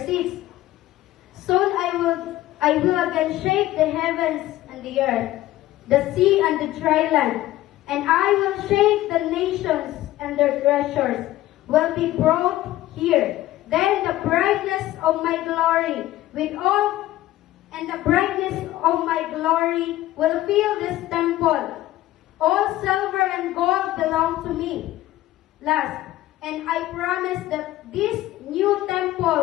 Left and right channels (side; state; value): right; quieter; 15.4 dB